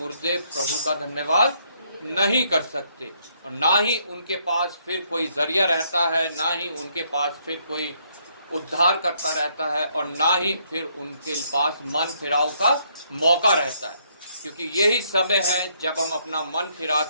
प्रभु का धन्यवाद नहीं कर सकते, और ना ही उनके पास फिर कोई जरिया रहता है, ना ही उनके पास फिर कोई उद्धार करता रहता है, और ना ही फिर उनके पास मन फिराव का मौका रहता है। क्योंकि यही समय है जब हम अपना मन फिरा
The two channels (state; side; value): inverted; both; correlation -0.70